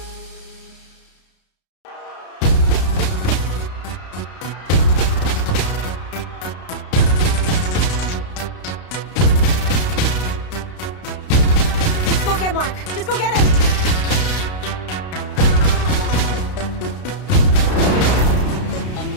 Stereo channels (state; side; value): late; right; 32 ms